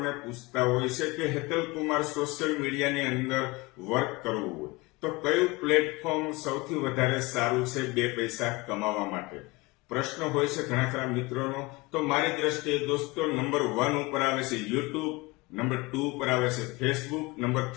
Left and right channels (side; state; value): right; quieter; 23.5 dB